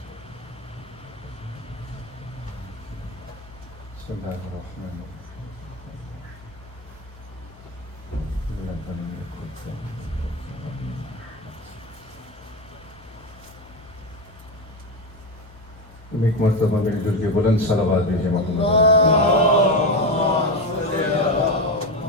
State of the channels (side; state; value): both; normal; correlation 0.16